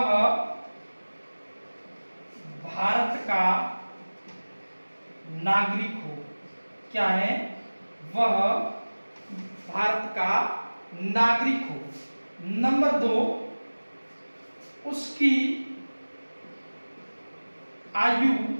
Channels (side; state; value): both; inverted; correlation -1.00